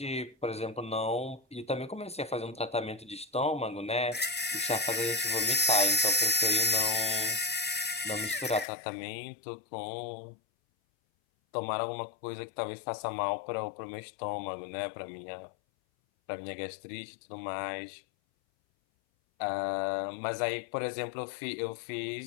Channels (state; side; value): drops out; right; at 8.7 s